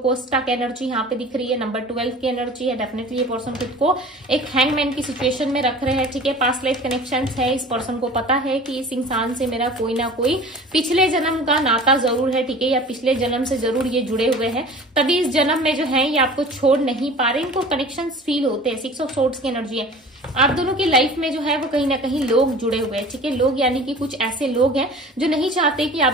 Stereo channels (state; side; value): normal; both; correlation 0.42